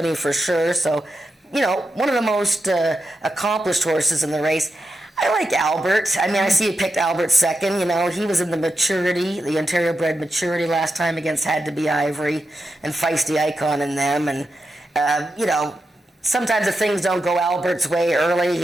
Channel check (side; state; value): both; normal; correlation 0.88